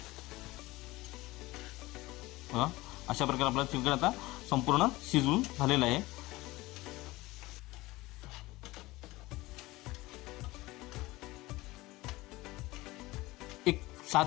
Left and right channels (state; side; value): quieter; right; 19.8 dB